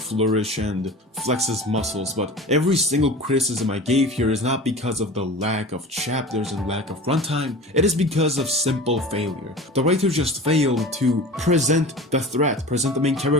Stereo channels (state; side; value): normal; both; correlation 0.36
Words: and flex his muscles, but every single criticism I gave here is not because of the lack of chapters and lack of runtime, it is because of simple failure. The writer just failed to present the threat, present the main